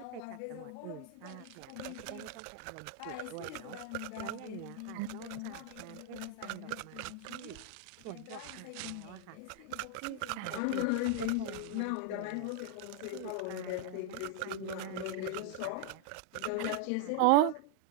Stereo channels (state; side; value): different; both; correlation 0.00